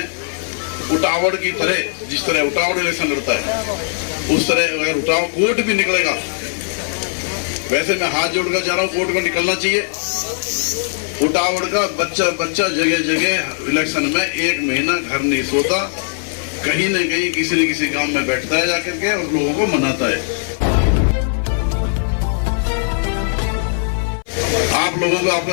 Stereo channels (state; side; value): silent; right; 59 dB below the other